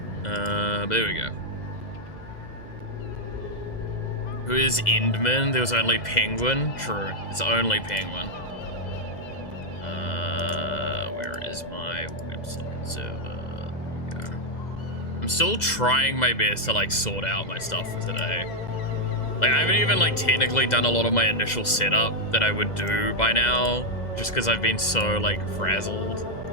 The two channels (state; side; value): late; right; 2.0 ms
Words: But there we go. Who is Endman? There was only Penguin? True, it's only Penguin. Where is my website server? There we go. I'm still trying my best to like sort out my stuff for today. Like, I haven't even like technically done a lot of my initial setup that I would do by now, just because I've been so like frazzled.